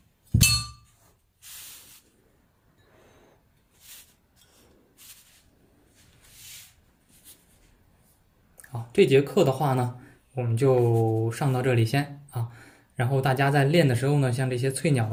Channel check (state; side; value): identical; both; correlation 1.00